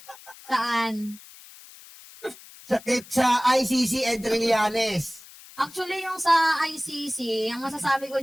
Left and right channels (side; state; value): left; noise; hiss, 20 dB below the sound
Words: Saan? Sa ICC and Trillanes. Actually, yung sa ICC, ang masasabi ko